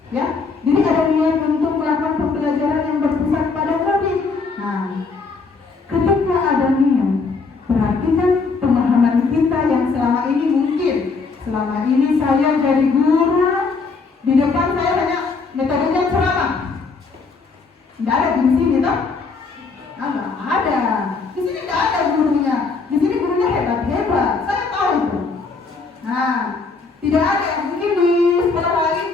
ya. Jadi ada niat untuk melakukan pembelajaran yang berpusat pada murid. Nah, ketika ada niat, berarti kan pemahaman kita yang selama ini mungkin selama ini saya jadi guru, di depan saya hanya metodenya ceramah. Tidak ada di sini toh? Nggak ada. Di sini tidak ada gurunya. Di sini gurunya hebat-hebat. Saya tahu itu. Nah, tidak ada yang mungkin di sekolah lain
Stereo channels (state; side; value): quieter; right; 4.5 dB